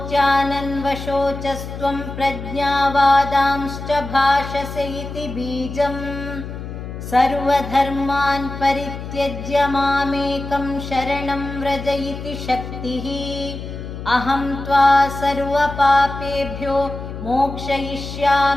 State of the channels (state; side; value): noise; left; hum, 9 dB below the sound